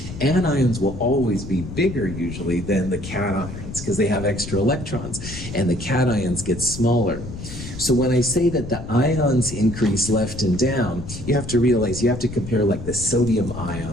Anions will always be bigger usually than the cations because they have extra electrons, and the cations get smaller. So when I say that the ions increase left and down, you have to realize you have to compare like the sodium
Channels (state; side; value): noise; left; rumble, 10 dB below the sound